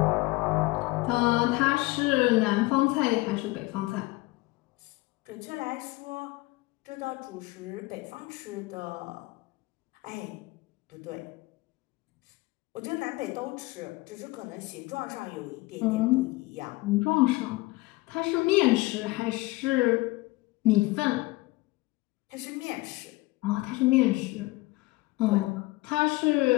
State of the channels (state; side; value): quieter; right; 21.5 dB